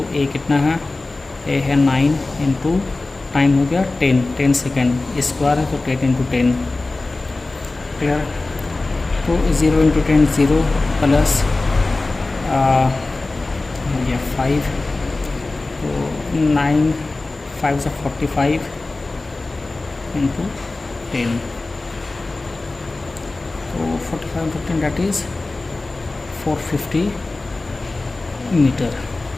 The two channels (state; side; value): quieter; right; 3.2 dB